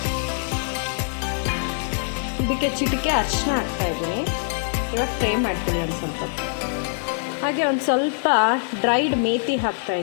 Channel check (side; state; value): right; silent; 63 dB below the other